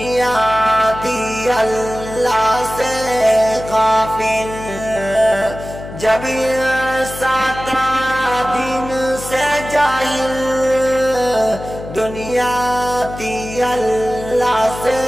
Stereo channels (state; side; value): noise; left; hum, 12 dB below the sound